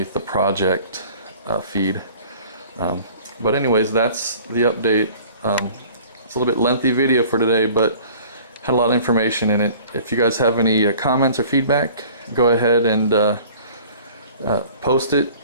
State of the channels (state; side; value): inverted; both; correlation -0.48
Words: the project feed. But anyways, that's the update. It's a little bit lengthy video for today, but had a lot of information in it. If you guys have any comments or feedback, go ahead and post it.